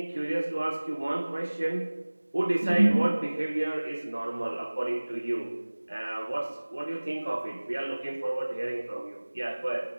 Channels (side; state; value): both; inverted; correlation -1.00